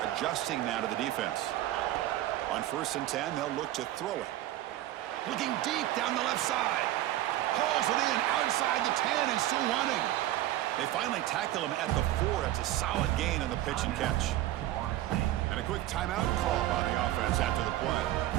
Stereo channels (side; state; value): left; quieter; 14.5 dB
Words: adjusting now to the defense. On 1st and 10, they'll look to throw it. Looking deep down the left side. Hauls it in outside the 10 and still running. They finally tackle him at the 4. That's a solid gain on the pitch and catch. And a quick timeout call by the offense after the play.